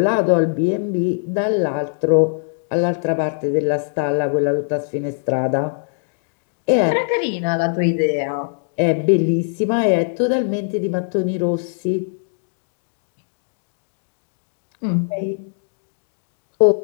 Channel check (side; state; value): right; silent; 65 dB below the other